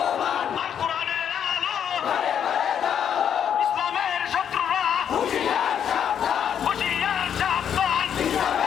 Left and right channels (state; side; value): quieter; right; 8.7 dB